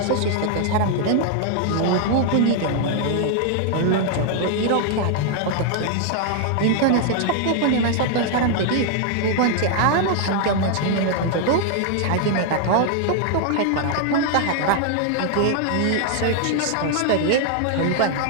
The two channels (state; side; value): different; both; correlation 0.00